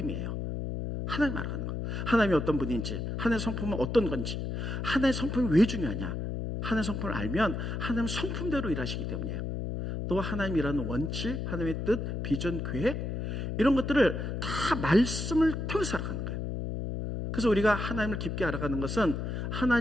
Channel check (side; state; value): left; noise; hum, 3 dB below the sound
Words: 하나님 알아가는 것. 하나님이 어떤 분인지, 하나님의 성품은 어떤 건지, 하나님의 성품이 왜 중요하냐. 하나님의 성품을 알면 하나님은 성품대로 일하시기 때문이에요. 또 하나님이라는 원칙, 하나님의 뜻, 비전, 계획, 이런 것들을 다 말씀을 통해서 알아가는 거예요. 그래서 우리가 하나님을 깊게 알아가는 것은,